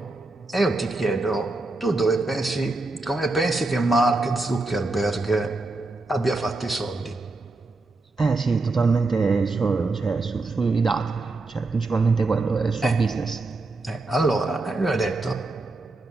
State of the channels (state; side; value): quieter; left; 3.2 dB